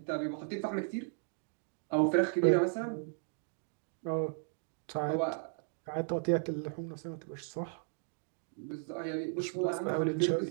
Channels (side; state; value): left; silent; digital silence